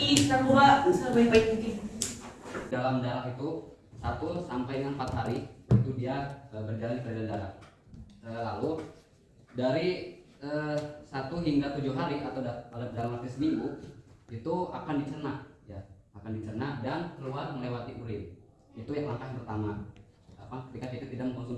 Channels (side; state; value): both; identical; correlation 1.00